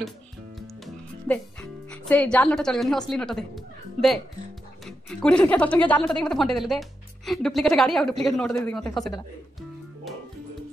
दे से जाल नोट चलबनी असली नोट दे दे 20 टका 10 टका जाल नोट दे मते फंटे देलु दे डुप्लीकेट गाड़ी और डुप्लीकेट नोट दे दी मते फसे देला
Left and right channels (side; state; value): both; normal; correlation 0.86